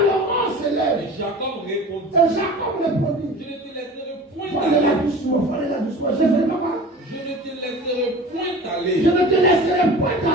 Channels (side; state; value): both; normal; correlation 0.39